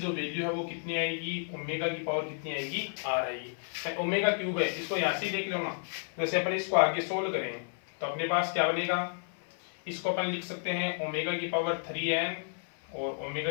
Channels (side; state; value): right; silent; 57 dB below the other